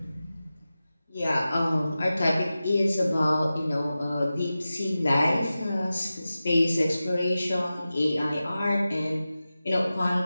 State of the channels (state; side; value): inverted; both; correlation -0.94